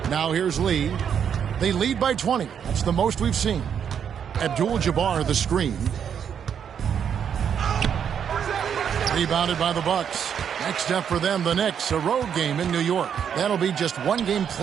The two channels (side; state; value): left; quieter; 8.0 dB